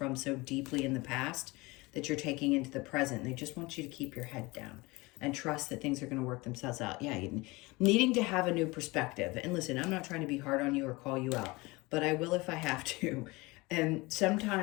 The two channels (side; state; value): right; quieter; 23.3 dB